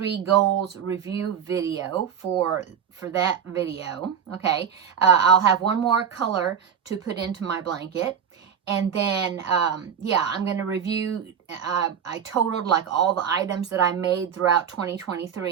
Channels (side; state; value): left; quieter; 7.9 dB